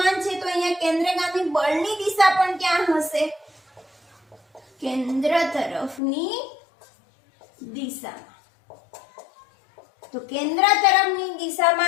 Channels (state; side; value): drops out; right; at 6.0 s